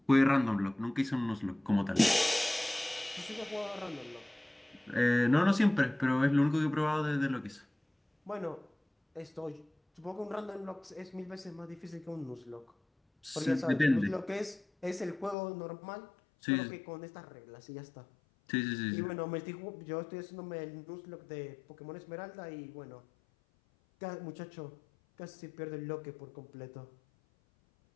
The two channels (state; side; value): drops out; right; at 15.4 s